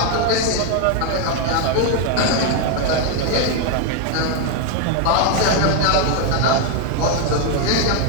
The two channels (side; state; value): both; different; correlation 0.01